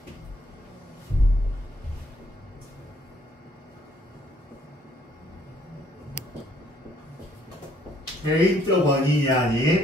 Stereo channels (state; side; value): normal; both; correlation 0.64